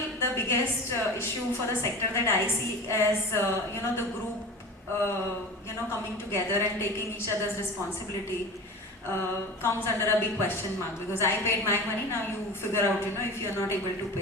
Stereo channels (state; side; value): normal; both; correlation 0.33